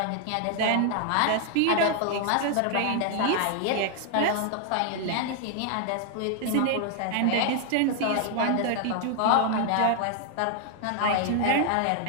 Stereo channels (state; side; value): different; both; correlation 0.00